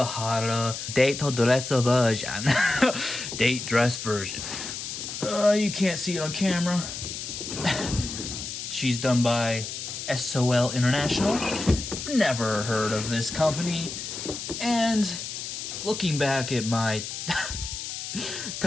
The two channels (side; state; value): left; noise; hiss, 7 dB below the sound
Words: date dress version. Date dress version. You can't see it on camera. She's done by SOL International. Never heard of this company. And looking back at my